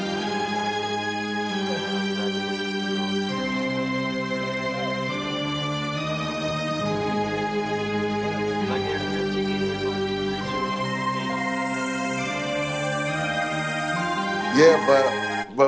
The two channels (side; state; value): both; identical; correlation 1.00